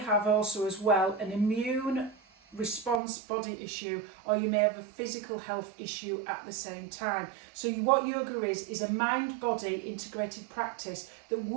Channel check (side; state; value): left; drops out; at 3.0 s